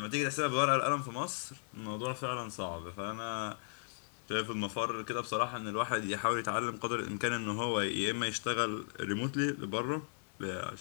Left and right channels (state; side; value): silent; right; digital silence